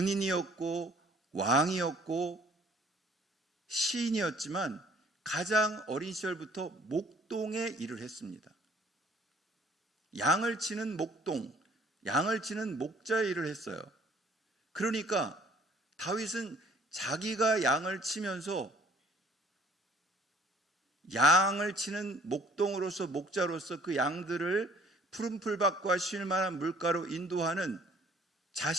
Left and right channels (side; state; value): both; normal; correlation 0.56